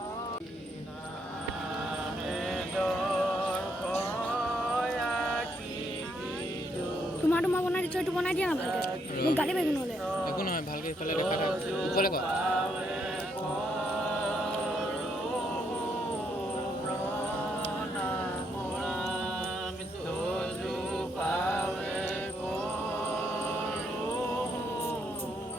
তোমাৰ বনাই দিছো এইটো বনাই দিয়া না ভালকে মোক গালি পাৰিব নহ'লে একো নহয় ভালকে ইফালে দেখা থাক ওপৰলে ক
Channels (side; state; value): both; normal; correlation 0.74